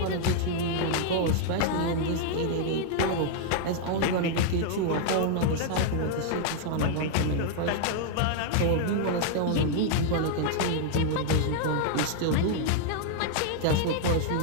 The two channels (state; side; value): different; both; correlation -0.01